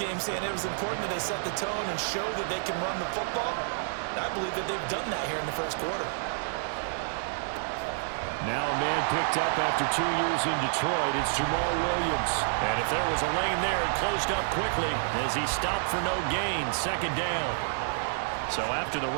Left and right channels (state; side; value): silent; left; 55 dB below the other